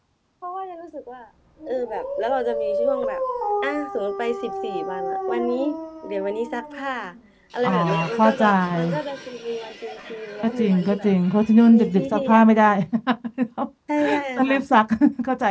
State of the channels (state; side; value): identical; both; correlation 1.00